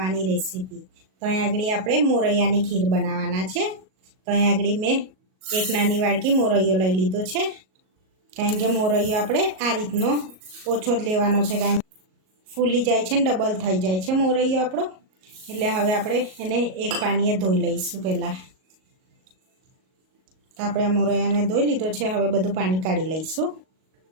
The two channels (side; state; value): left; late; 38 ms